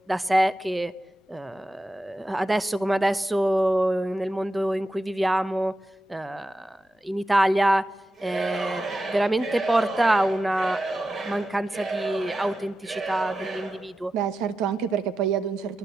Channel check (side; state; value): both; normal; correlation 0.91